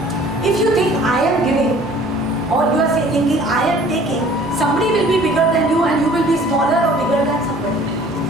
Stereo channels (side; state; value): both; normal; correlation 0.51